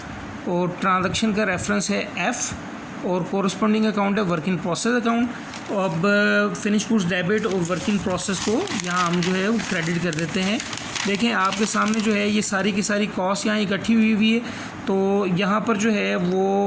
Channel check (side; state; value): both; identical; correlation 1.00